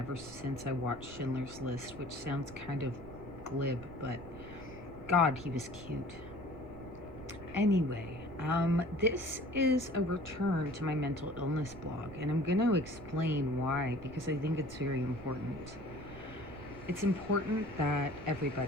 since I watched Schindler's List, which sounds kind of glib, but God, he was cute. Anyway, this is a return to my mental illness blog, and I'm going to explain why, because I think it's very important. It's important that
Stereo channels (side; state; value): right; noise; rumble, 15 dB below the sound